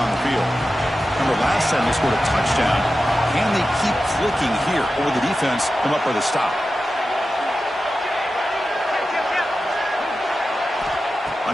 the field. Remember last time they scored a touchdown. Can they keep clicking here, or will the defense come up with a stop?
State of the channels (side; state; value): both; normal; correlation 0.92